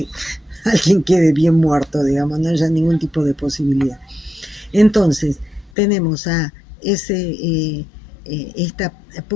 alguien quede bien muerto, digamos, no haya ningún tipo de posibilidad. Entonces, tenemos a esta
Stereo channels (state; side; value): drops out; right; at 5.7 s